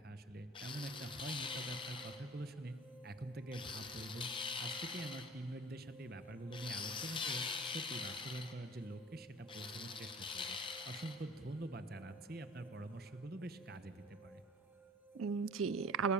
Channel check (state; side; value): normal; both; correlation 0.45